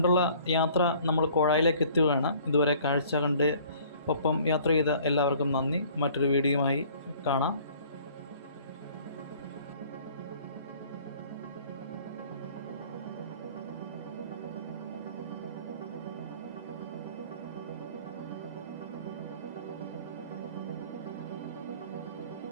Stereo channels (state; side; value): inverted; both; correlation -0.53